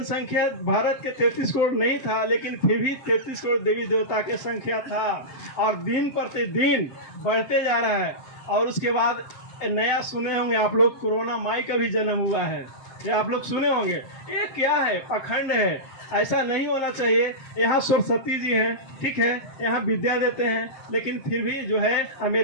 भारत के 33 करोड़ नहीं था, लेकिन फिर भी 33 करोड़ देवी देवता की संख्या था और दिन प्रतिदिन बढ़ते जा रहा है। और उसके बाद नया सुने होंगे आप लोग, कोरोना माई का भी जन्म हुआ है, ये आप लोग सुने होंगे। ये क्या है? पखंड है, ऐसा नहीं होना चाहिए। यहाँ सरस्वती जी हैं, ठीक है, यहाँ विद्या देते हैं, लेकिन फिर भी जो है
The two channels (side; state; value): right; late; 7.6 ms